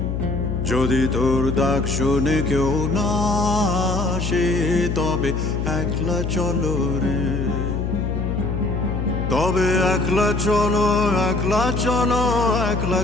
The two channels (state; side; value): noise; left; hum, 2 dB below the sound